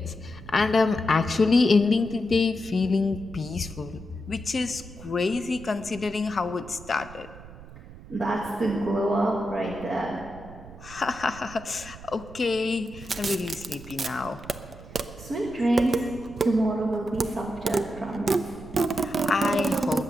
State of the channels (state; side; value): noise; right; rumble, 17 dB below the sound